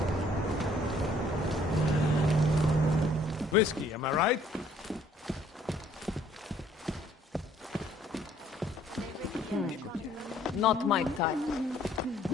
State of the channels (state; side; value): normal; both; correlation 0.61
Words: Whiskey, am I right? Not my type.